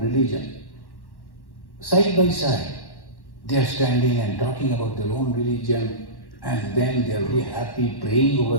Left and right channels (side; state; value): right; late; 1.1 ms